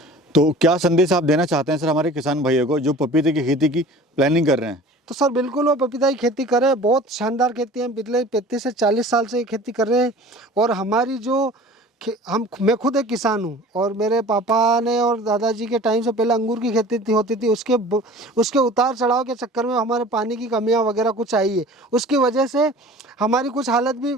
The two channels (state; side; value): normal; both; correlation 0.43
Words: तो क्या संदेश आप देना चाहते हैं सर हमारे किसान भाइयों को जो पपीते की खेती की प्लानिंग कर रहे हैं? तो सर बिल्कुल वो पपीता की खेती करें, बहुत शानदार खेती है। पिछले 35 से 40 साल से ये खेती कर रहे हैं। और हमारी जो मैं खुद एक किसान हूँ और मेरे पापा ने और दादाजी के टाइम से पहले अंगूर की खेती होती थी। उसके उतार चढ़ाव के चक्कर में हमारे पानी की कमियाँ वगैरह कुछ आई है, उसकी वजह से हमारी कुछ हालत भी